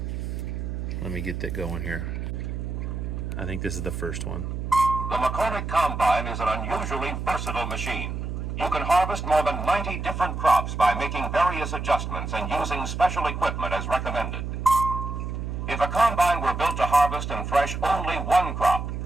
Let me get that going here. I think this is the first one. The McCormick Combine is an unusually versatile machine. You can harvest more than 90 different crops by making various adjustments and using special equipment as recommended. If a combine were built to harvest and thresh only one crop,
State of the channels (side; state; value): right; noise; hum, 4 dB below the sound